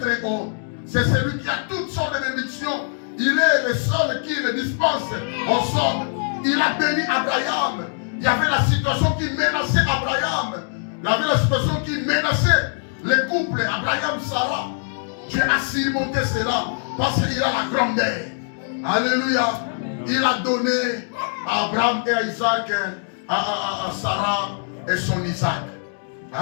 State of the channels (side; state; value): right; silent; digital silence